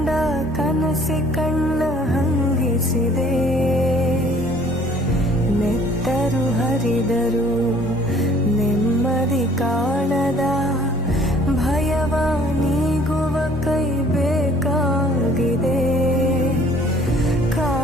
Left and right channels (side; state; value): both; normal; correlation 0.56